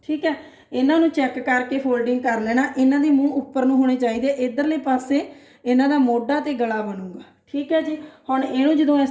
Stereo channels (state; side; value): identical; both; correlation 1.00